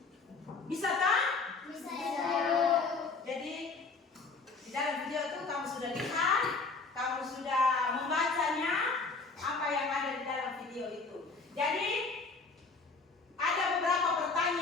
Bisa kan? Bisa ya. Jadi di dalam video itu kamu sudah lihat, kamu sudah membacanya apa yang ada di dalam video itu. Jadi ada beberapa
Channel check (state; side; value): quieter; right; 4.2 dB